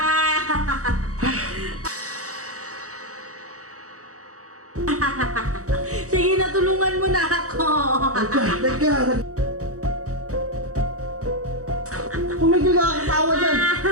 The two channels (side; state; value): left; late; 0.65 ms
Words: Sige na, tulungan mo na ako. Teka. Tumigil ka katawa dyan.